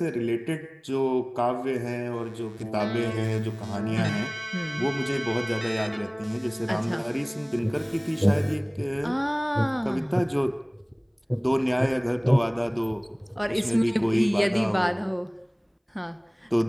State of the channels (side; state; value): both; identical; correlation 1.00